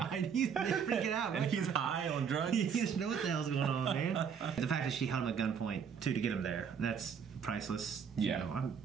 He's freaking out. And he's high on drugs. He doesn't know what the hell's going on, man. The fact that she held him at gunpoint, too, to get him there, that's priceless. Yeah. I'm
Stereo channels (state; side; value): quieter; left; 7.0 dB